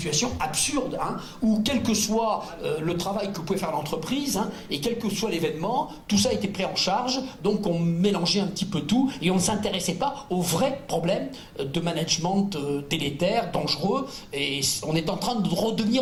absurdes, hein, où quel que soit le travail que pouvait faire l'entreprise, hein, et quel que soit l'événement, tout ça était pris en charge, donc on mélangeait un petit peu tout, et on ne s'intéressait pas aux vrais problèmes de management délétère, dangereux, et on est en train de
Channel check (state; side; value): identical; both; correlation 1.00